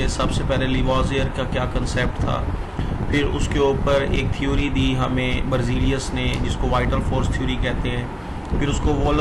सबसे पहले लिवाजियर का क्या कंसेप्ट था, फिर उसके ऊपर एक थ्योरी दी हमें बर्जीलियस ने जिसको वाइटल फोर्स थ्योरी कहते हैं, फिर उसको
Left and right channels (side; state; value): both; identical; correlation 1.00